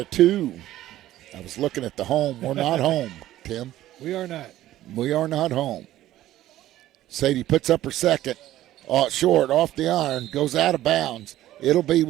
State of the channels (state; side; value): quieter; left; 14.1 dB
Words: I was looking at the home. We're not home, Tim. We are not. We are not home. Sadie puts up her second. Short, off the iron, goes out of bounds. It'll be